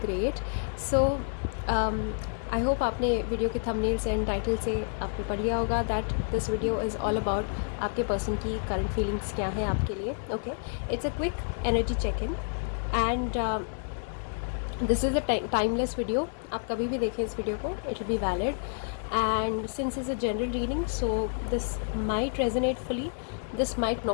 So I hope आपने video के thumbnail से and title से आपने पढ़ लिया होगा that this video is all about आपके person की करंट फीलिंग्स क्या हैं आपके लिए. Okay, it's a quick energy check in and this is a timeless video. आप कभी भी देखें इस वीडियो को, it will be valid. And since is a general reading, so this might resonate fully, this might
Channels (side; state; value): right; silent; digital silence